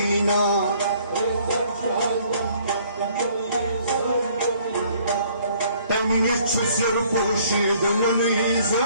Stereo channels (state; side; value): inverted; both; correlation -0.60